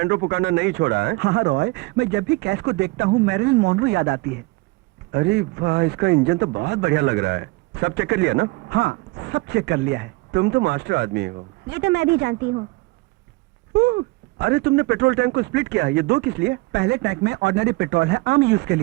पुकारना नहीं छोड़ा है? हाँ रॉय, मैं जब भी कैस को देखता हूँ मैरिलन मॉन्ट्रो याद आती है। अरे वाह, इसका इंजन तो बहुत बढ़िया लग रहा है। सब चेक कर लिया ना? हाँ, सब चेक कर लिया है। तुम तो मास्टर आदमी हो। ये तो मैं भी जानती हूँ। अरे तुमने पेट्रोल टैंक को स्प्लिट किया, ये दो किस लिए? पहले टैंक में ऑर्डिनरी पेट्रोल है, आम यूज के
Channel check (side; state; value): left; quieter; 23.4 dB